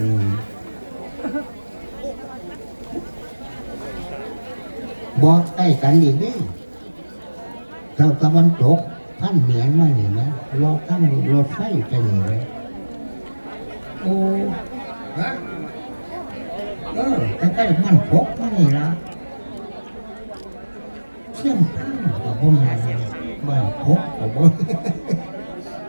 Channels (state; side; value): inverted; both; correlation -1.00